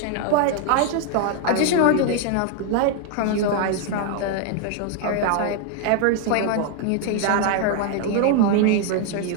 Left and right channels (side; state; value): both; different; correlation 0.00